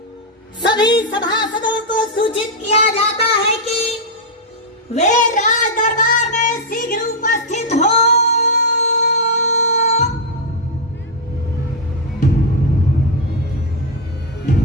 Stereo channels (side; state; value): both; normal; correlation -0.01